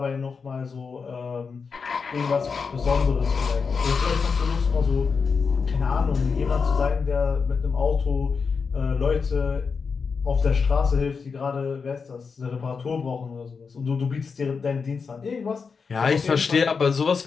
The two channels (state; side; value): quieter; right; 5.3 dB